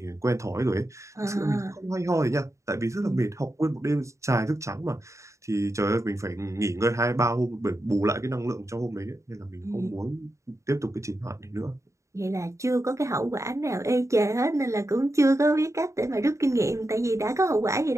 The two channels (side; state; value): left; late; 0.14 ms